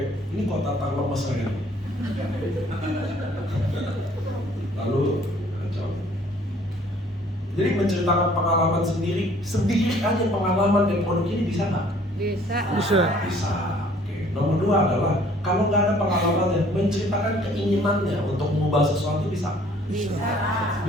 Ini kota lemes saya. Lalu, kacau. Jadi menceritakan pengalaman sendiri aja pengalaman dan produk ini bisa nggak? Bisa. Bisa. Oke. Nomor 2 adalah kalau nggak ada pengalamannya, menceritakan keinginannya untuk mengubah sesuatu bisa?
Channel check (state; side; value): normal; both; correlation 0.57